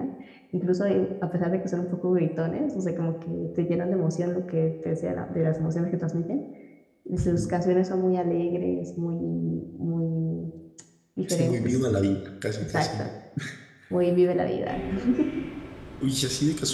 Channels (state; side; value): identical; both; correlation 1.00